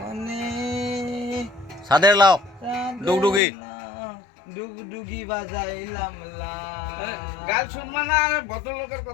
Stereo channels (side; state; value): right; drops out; at 3.4 s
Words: সাদের লাও ডুগডুগি ডুগডুগি বাজাইলাম লা গান শুনবা না আর ভদ্রলোকের